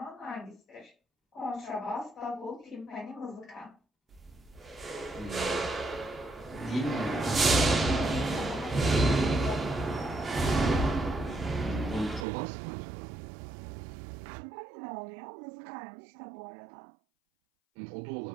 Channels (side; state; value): left; drops out; at 12.2 s